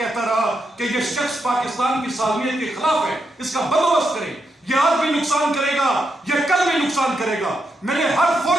رہا کہ یہ شخص پاکستان کی سالمیت کے خلاف ہے, اس کا بندوبست کریں. یہ آج بھی نقصان کرے گا, یہ کل بھی نقصان کرے گا. میں نے ہر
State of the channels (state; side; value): normal; both; correlation 0.83